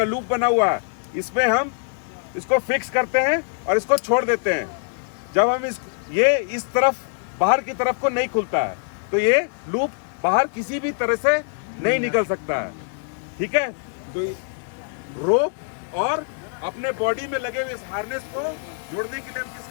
लूप बना हुआ है, इसमें हम इसको फिक्स करते हैं और इसको छोड़ देते हैं। जब हम ये इस तरफ बाहर की तरफ को नहीं खुलता है, तो ये लूप बाहर किसी भी तरह से नहीं निकल सकता है। ठीक है, तो रोप और अपने बॉडी में लगे हुए इस हार्नेस को जोड़ने के लिए हम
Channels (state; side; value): silent; right; digital silence